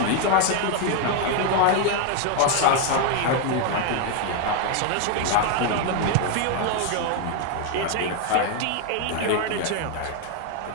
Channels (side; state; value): both; different; correlation 0.01